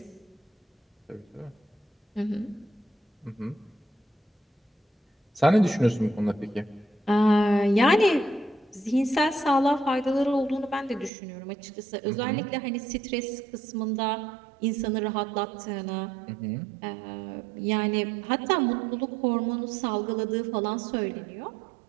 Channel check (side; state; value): left; drops out; at 11.1 s